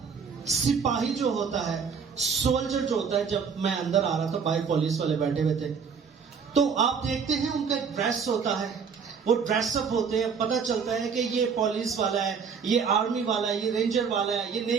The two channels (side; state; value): left; quieter; 6.1 dB